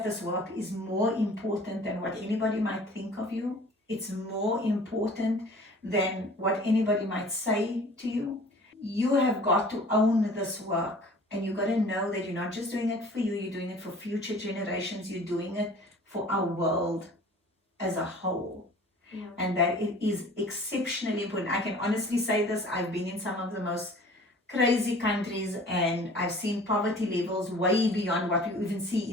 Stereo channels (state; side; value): normal; both; correlation 0.47